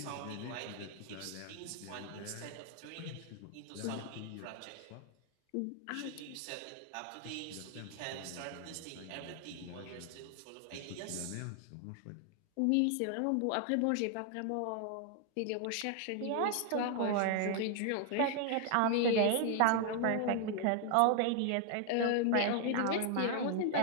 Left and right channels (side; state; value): both; different; correlation 0.00